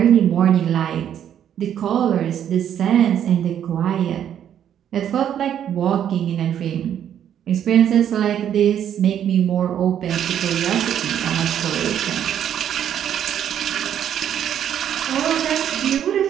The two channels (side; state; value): left; quieter; 9.8 dB